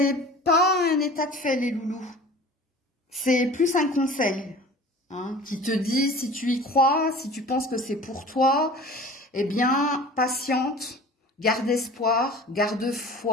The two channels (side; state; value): both; normal; correlation 0.42